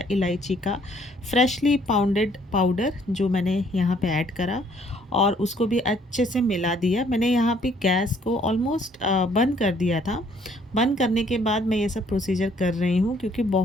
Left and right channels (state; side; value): normal; both; correlation 0.63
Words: इलायची का फ्रेशली पाउंडेड पाउडर, जो मैंने यहाँ पे ऐड करा और उसको भी अच्छे से मिला दिया। मैंने यहाँ पे गैस को ऑलमोस्ट बंद कर दिया था। बंद करने के बाद मैं ये सब प्रोसीजर कर रही हूँ, क्योंकि